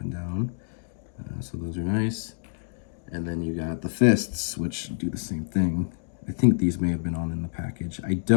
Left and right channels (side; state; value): right; silent; digital silence